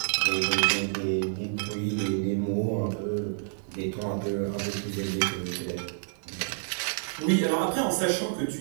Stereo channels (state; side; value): silent; left; digital silence